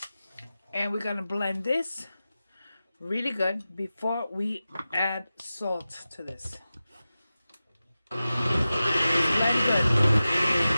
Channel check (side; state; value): both; inverted; correlation -0.94